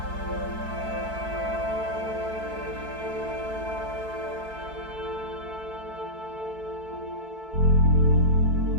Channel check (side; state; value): left; late; 4.6 ms